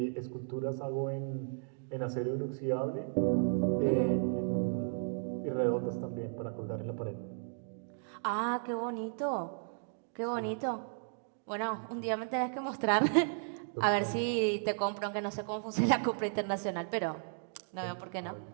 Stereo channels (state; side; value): silent; left; digital silence